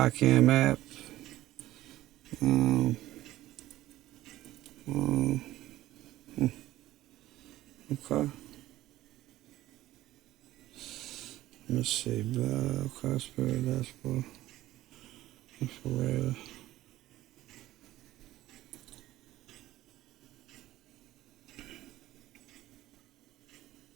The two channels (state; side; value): quieter; left; 15.5 dB